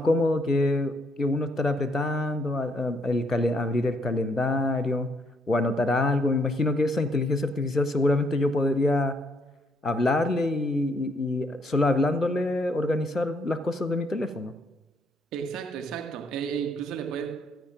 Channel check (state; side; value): normal; both; correlation 0.71